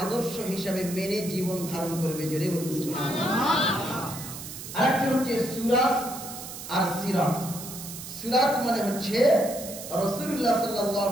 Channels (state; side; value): noise; right; hiss, 11 dB below the sound